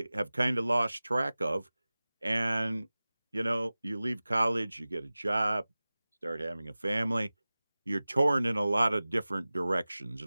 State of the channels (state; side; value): inverted; both; correlation -0.98